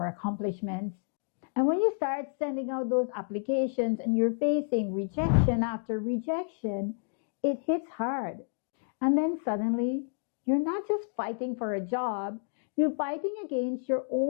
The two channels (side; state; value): right; silent; digital silence